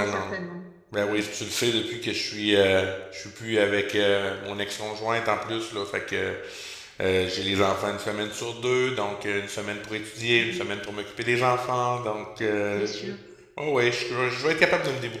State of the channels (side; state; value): both; identical; correlation 1.00